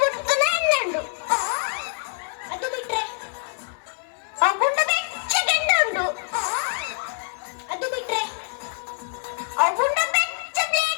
ಬಿಡ್ತಾನೆ ಎಣ್ಣೆಂಡು ಅದು ಬಿಟ್ರೆ ಗುಂಡ ಬೆಚ್ಚ ಗೆಂಡ ಉಂಟು ಅದು ಬಿಟ್ರೆ ಗುಂಡ ಬೆಚ್ಚ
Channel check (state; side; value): silent; right; digital silence